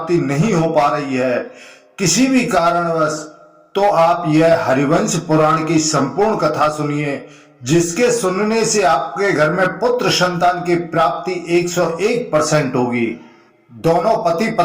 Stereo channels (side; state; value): both; identical; correlation 1.00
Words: नहीं हो पा रही है किसी भी कारणवश, तो आप यह हरिवंश पुराण की संपूर्ण कथा सुनिए, जिसके सुनने से आपके घर में पुत्र संतान की प्राप्ति 101% होगी। दोनों पति